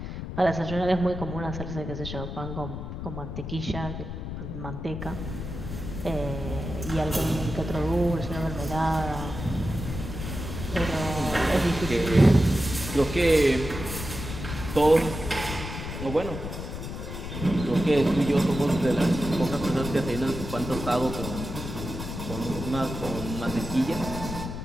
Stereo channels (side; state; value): left; noise; rumble, 7 dB below the sound